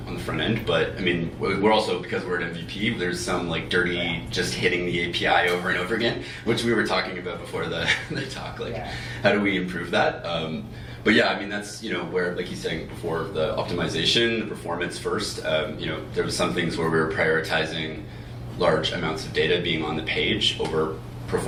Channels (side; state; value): both; identical; correlation 1.00